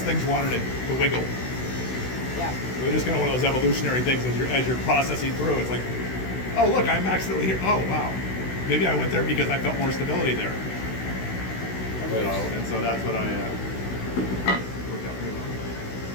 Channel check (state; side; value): late; right; 16 ms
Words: things wanted to wiggle. Yeah. It was just kind of one of those evolutionary things as you're processing through. It's like, oh look, I'm accidentally here. Oh wow, maybe I went there because I felt more stability there. You know, and so that's what I worked out pretty well.